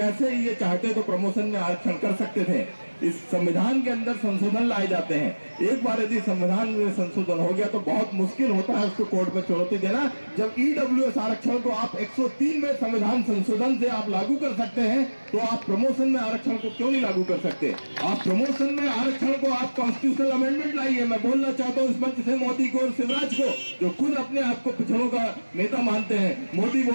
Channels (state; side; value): inverted; both; correlation -1.00